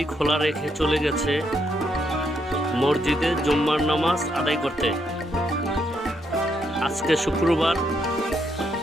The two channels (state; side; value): normal; both; correlation 0.76